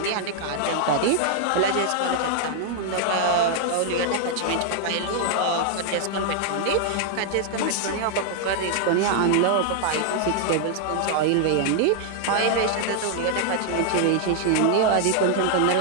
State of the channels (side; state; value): both; different; correlation 0.00